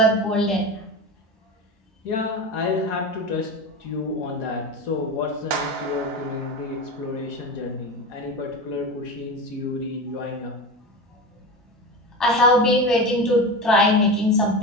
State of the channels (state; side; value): normal; both; correlation 0.25